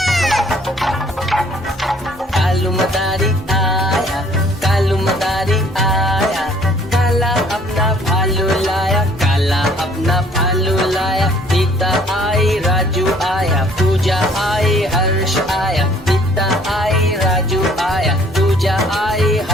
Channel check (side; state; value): both; normal; correlation 0.58